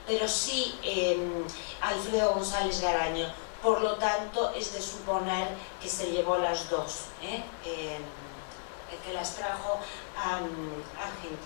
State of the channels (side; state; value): right; silent; digital silence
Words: pero sí Alfredo González Garaño. Por lo tanto, es de suponer que se llevó las dos, que las trajo a